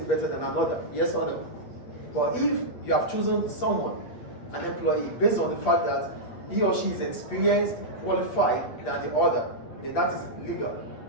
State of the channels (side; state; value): right; late; 8.5 ms